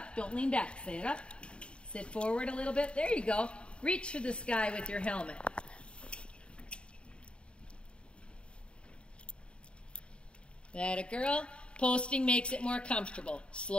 Don't lean back. Sit up. Sit forward a little bit. There you go. Reach for the sky with your helmet. That a girl. Posting makes it more comfortable.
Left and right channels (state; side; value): late; right; 0.055 ms